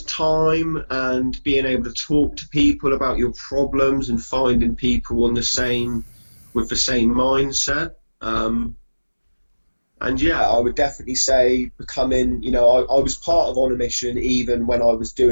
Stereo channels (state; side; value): inverted; both; correlation -1.00